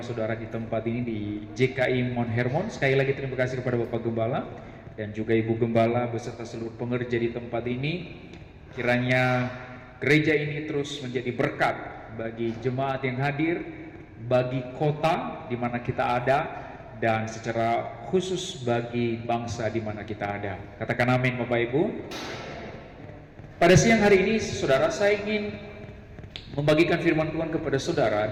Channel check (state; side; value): identical; both; correlation 1.00